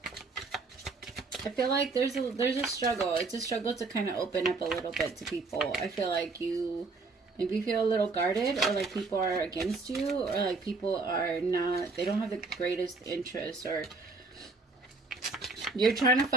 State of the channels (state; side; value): quieter; left; 3.9 dB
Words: I feel like there's a struggle. It's a struggle to kind of open up a little bit to people. I feel like you maybe feel a little guarded, or like people are against you, or like people are not, they don't have the greatest interest, or you're trying to